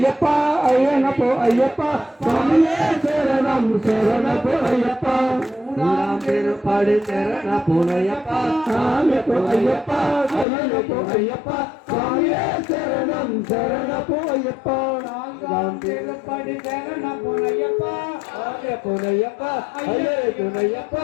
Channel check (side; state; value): right; drops out; at 10.5 s